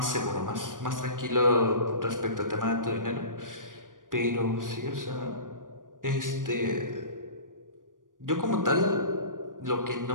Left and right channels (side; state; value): left; late; 0.89 ms